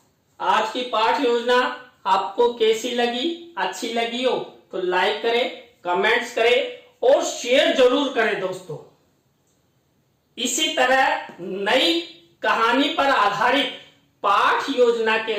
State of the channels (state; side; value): identical; both; correlation 1.00